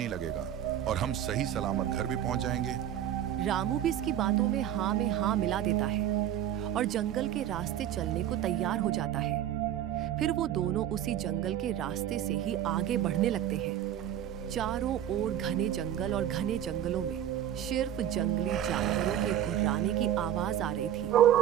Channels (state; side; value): quieter; left; 10.9 dB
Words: लगेगा और हम सही सलामत घर भी पहुंच जाएंगे। रामू भी इसकी बातों में हाँ मिला देता है और जंगल के रास्ते चलने को तैयार हो जाता है। फिर वो दोनों उसी जंगल के रास्ते से ही आगे बढ़ने लगते हैं। चारों ओर घने जंगल और घने जंगलों में सिर्फ जंगली जानवरों के गुर्राने की आवाज आ रही